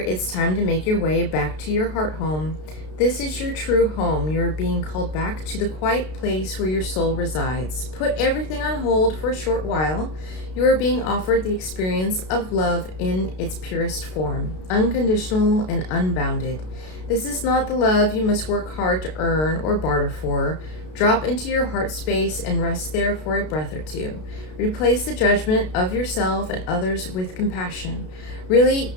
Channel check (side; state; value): right; late; 32 ms